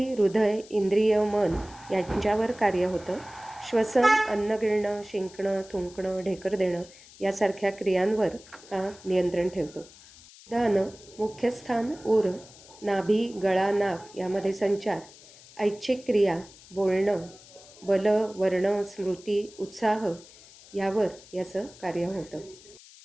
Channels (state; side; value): noise; left; hiss, 22 dB below the sound